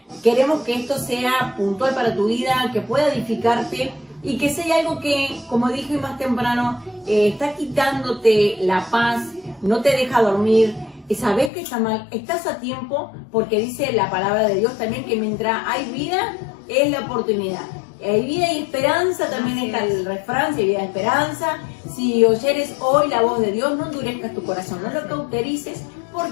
queremos que esto sea puntual para tu vida, que pueda edificarte y que sea algo que, como dije más temprano, está quitándote la paz, no te deja dormir, sabes que está mal, estás a tiempo, porque dice la palabra de Dios también que mientras hay vida es la oportunidad. Hay vida y esperanza, también está el refrán, si hay vida y esperanza. Si oyeres hoy la voz de Dios, no endurezcas tu corazón, no lo cauterices,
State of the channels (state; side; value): drops out; right; at 11.5 s